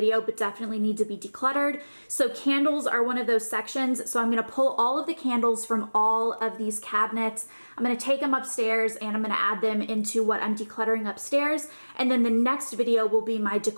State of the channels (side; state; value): both; inverted; correlation -1.00